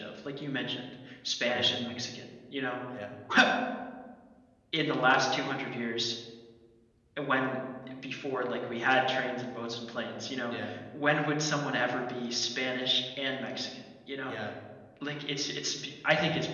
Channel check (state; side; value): identical; both; correlation 1.00